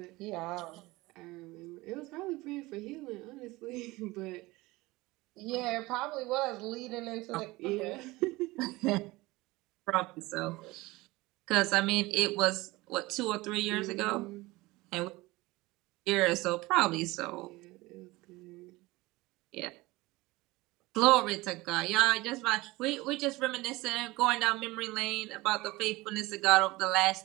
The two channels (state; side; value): quieter; left; 20.9 dB